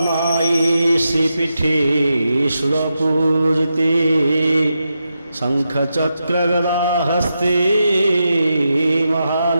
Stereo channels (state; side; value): inverted; both; correlation -0.87